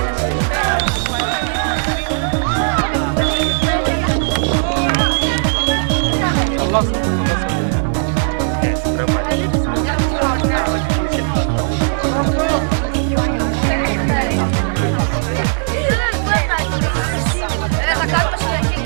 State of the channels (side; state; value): left; silent; digital silence